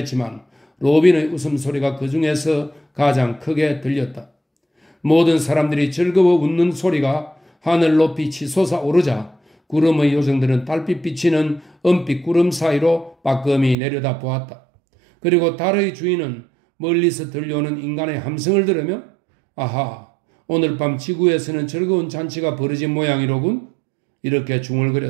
로빈의 웃음소리가 그 중에서 가장 크게 들렸다. 모든 사람들이 즐거워 웃는 소리가 하늘 높이 치솟아 오르자 구름의 요정들은 달빛 비치는 은빛 구름 사이로 빠끔히 내려다 보았다. 그리고 달의 주인은 멀리서 들려오는 인간의 함성을 들으며 아하, 오늘 밤 지구에서는 즐거운 잔치가 벌어진 모양이로군. 이렇게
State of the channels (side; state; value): left; drops out; at 13.8 s